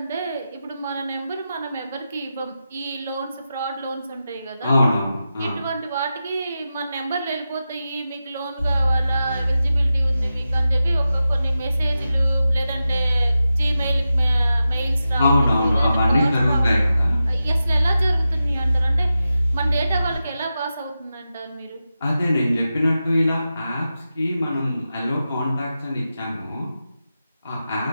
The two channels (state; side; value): inverted; both; correlation -0.91